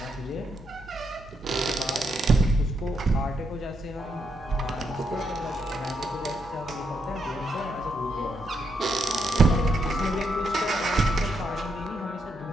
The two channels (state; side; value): normal; both; correlation 0.79